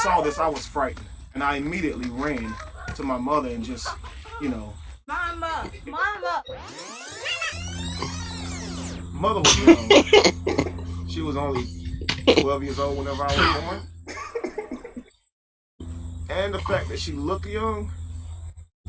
this, I was frightened, and I immediately ran to my mother and just, you know. Mama. Mother was young. She was only 12 years old whenever I was born. And the fact that she looked young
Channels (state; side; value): identical; both; correlation 1.00